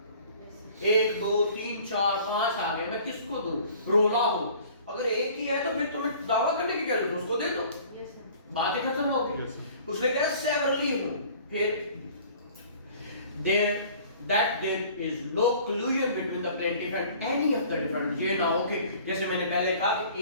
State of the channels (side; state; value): both; inverted; correlation -0.50